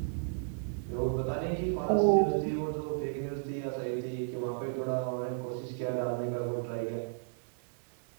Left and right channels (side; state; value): left; silent; digital silence